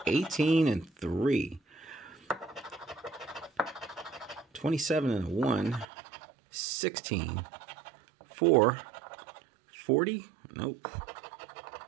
18 and 3. 27 and a 1. 16. 4. 40. Nope.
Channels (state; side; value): drops out; left; at 5.9 s